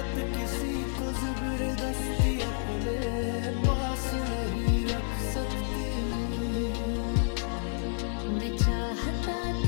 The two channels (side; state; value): right; silent; digital silence